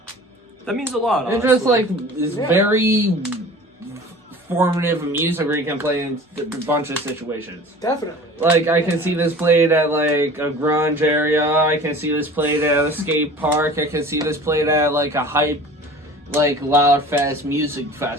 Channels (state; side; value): normal; both; correlation 0.42